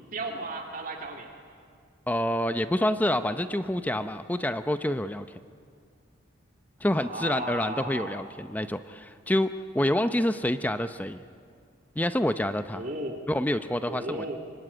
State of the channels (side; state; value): both; normal; correlation 0.79